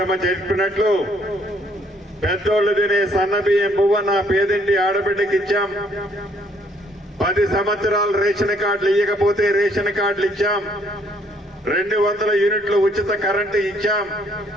చెప్పినట్లు పెద్దోళ్ళు తినే సన్నబియ్యం పువ్వ నా పేదింటి ఆడబిడ్డకి ఇచ్చాం. 10 సంవత్సరాలు రేషన్ కార్డులు ఇవ్వకపోతే రేషన్ కార్డులు ఇచ్చాం. 200 యూనిట్లు ఉచిత కరెంటు ఇచ్చాం.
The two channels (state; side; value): normal; both; correlation 0.66